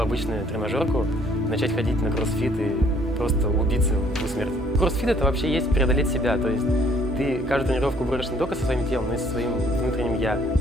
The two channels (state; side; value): normal; both; correlation 0.62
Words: тренажерку, начать ходить на кроссфит и просто убиться в смерть. Кроссфит — это вообще есть преодолеть себя, то есть ты каждую тренировку борешь не только со своим телом, но и со своим внутренним «я».